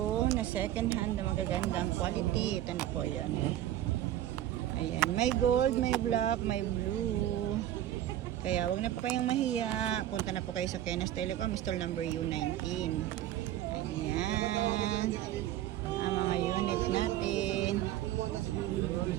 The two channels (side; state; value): left; quieter; 12.7 dB